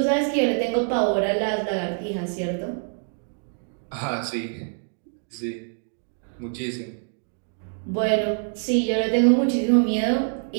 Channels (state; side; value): silent; left; 60 dB below the other